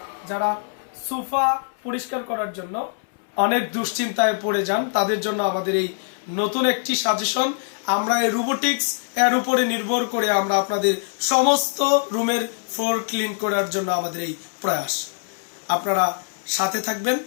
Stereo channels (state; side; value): silent; right; 63 dB below the other